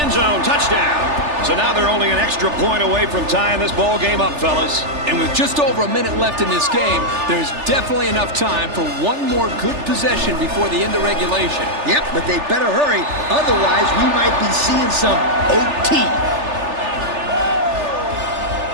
End zone, touchdown. So now they're only an extra point away from tying this ball game up, fellas. And with just over a minute left in this game, there's definitely enough time for one more good possession before the end of regulation. Yep, but they better hurry. Otherwise, we might be seeing some OT.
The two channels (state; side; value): late; left; 3.4 ms